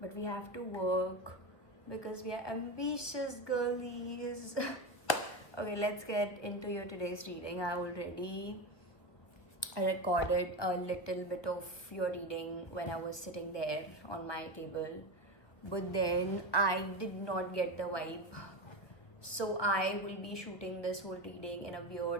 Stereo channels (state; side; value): late; right; 1.5 ms